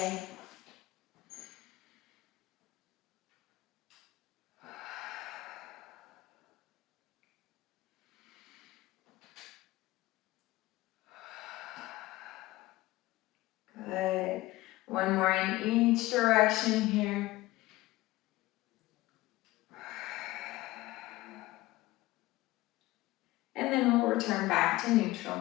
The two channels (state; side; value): quieter; right; 18.4 dB